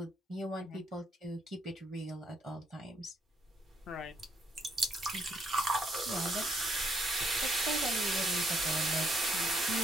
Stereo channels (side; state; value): both; normal; correlation 0.72